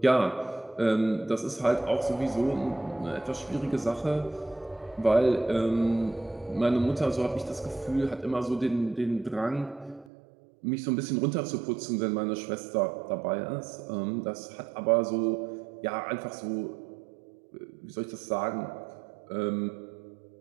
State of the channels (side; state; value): left; drops out; at 10.1 s